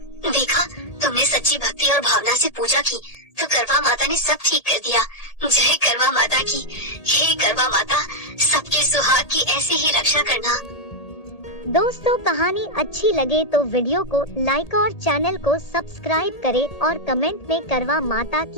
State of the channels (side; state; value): right; late; 1.8 ms